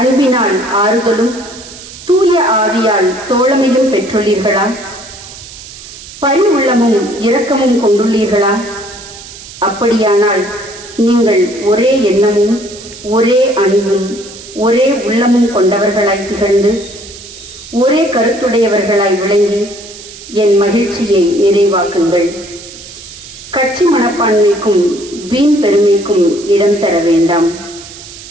அன்பினால் ஆறுதலும் தூய ஆவியால் தோழமையும் பெற்றுள்ளீர்களா? பரி உள்ளமும் இரக்கமும் கொண்டுள்ளீர்களா? அப்படியானால் நீங்கள் ஒரே எண்ணமும் ஒரே அன்பும் ஒரே உள்ளமும் கொண்டவர்களாய் திகழ்ந்து ஒரே கருத்துடையவர்களாய் விளங்கி என் மகிழ்ச்சியை நிறைவாக்குங்கள். கட்சி மனப்பான்மைக்கும் வீண் பெருமைக்கும் இடம் தர வேண்டாம்.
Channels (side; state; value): right; noise; hiss, 16 dB below the sound